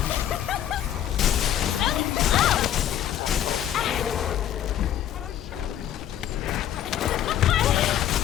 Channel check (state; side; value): quieter; right; 11.1 dB